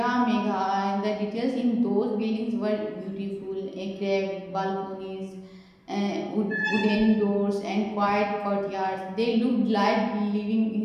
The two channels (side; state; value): both; identical; correlation 1.00